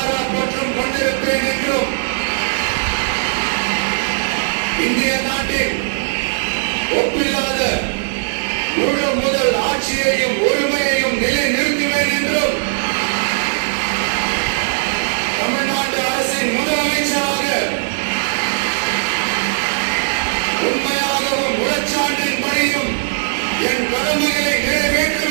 பற்றும் கொண்டிருப்பேன் என்றும் இந்திய நாட்டின் ஒப்பில்லாத முழு முதல் ஆட்சியையும் உரிமையையும் நிலைநிறுத்துவேன் என்றும் தமிழ்நாட்டு அரசின் முதலமைச்சராக உண்மையாகவும் உளச்சான்றின்படியும் என் கடமைகளை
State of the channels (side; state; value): left; silent; digital silence